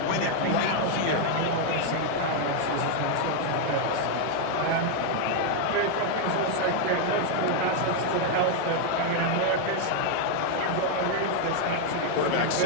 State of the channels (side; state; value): both; different; correlation 0.00